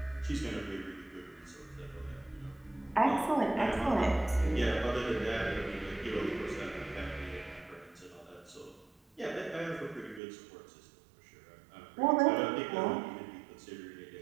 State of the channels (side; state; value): left; drops out; at 10.2 s